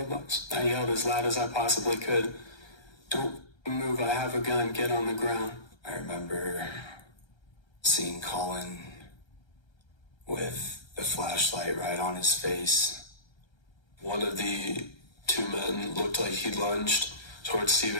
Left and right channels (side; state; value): right; late; 1.3 ms